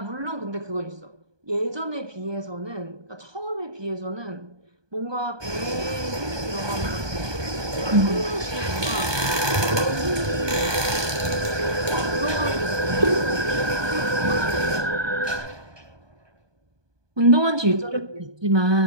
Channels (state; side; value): late; left; 1.2 ms